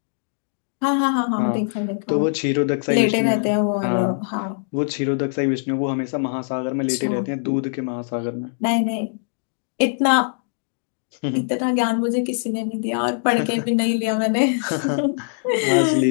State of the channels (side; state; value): right; silent; digital silence